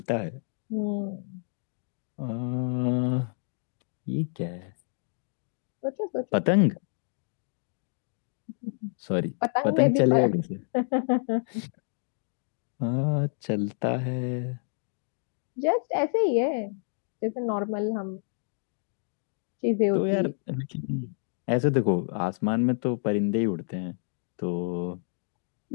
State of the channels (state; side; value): silent; right; digital silence